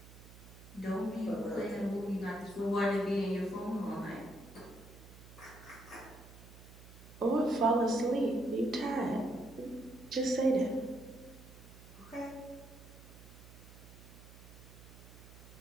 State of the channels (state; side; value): noise; right; hum, 18 dB below the sound